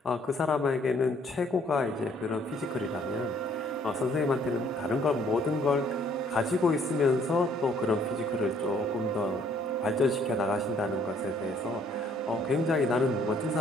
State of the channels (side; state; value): both; normal; correlation 0.63